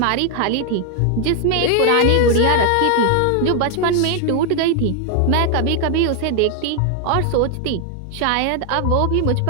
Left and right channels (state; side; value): different; both; correlation 0.00